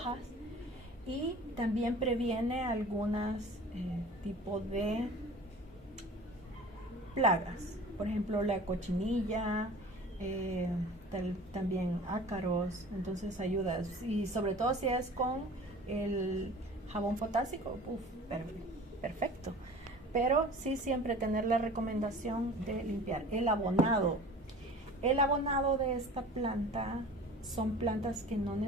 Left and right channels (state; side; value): normal; both; correlation 0.42